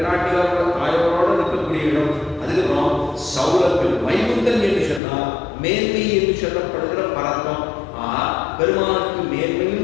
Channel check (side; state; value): right; drops out; at 5.0 s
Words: தாயோட இருக்கக்கூடிய இடம். அதுக்கப்புறம் சௌரபியம். வைகுந்தன் என்று சொன்னால் மேன்மை என்று சொல்லப்படுகிற பரத்தம். பெருமானுக்கு